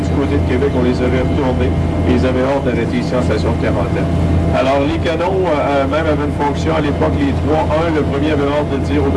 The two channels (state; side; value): identical; both; correlation 1.00